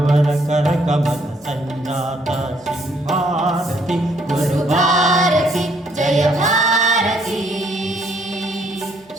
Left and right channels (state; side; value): normal; both; correlation 0.67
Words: ಕರಕಮಲ ಸಂಜಾತ ಶ್ರೀ ಭಾರತಿ ಗುರು ಭಾರತಿ